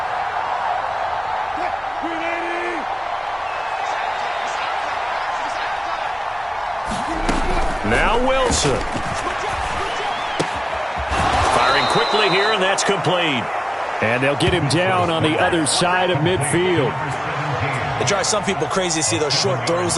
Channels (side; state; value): both; identical; correlation 1.00